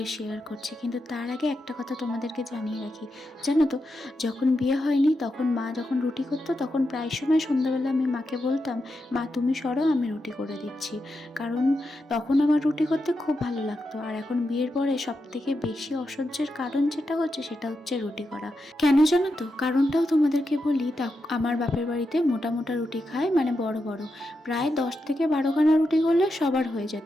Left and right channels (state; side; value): normal; both; correlation 0.86